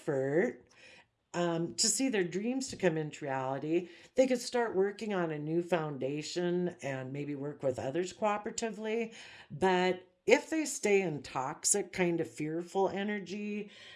to see their dreams to come into reality, they could start working on a new foundation and maybe work with others cooperatively. But if they stay in toxic, kind of fearful energy,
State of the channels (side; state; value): both; identical; correlation 1.00